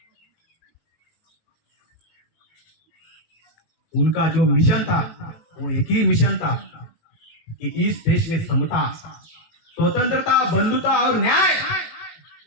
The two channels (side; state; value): right; late; 18 ms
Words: उनका जो मिशन था वो एक ही मिशन था कि इस देश में समता, स्वतंत्रता, बंधुता और न्याय